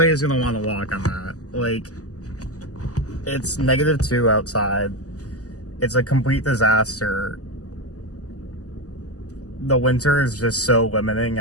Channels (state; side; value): late; right; 0.67 ms